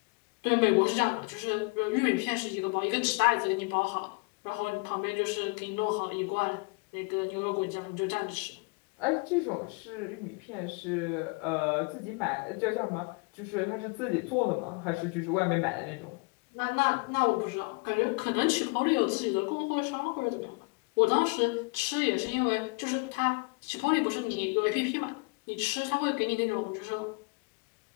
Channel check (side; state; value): right; quieter; 30.9 dB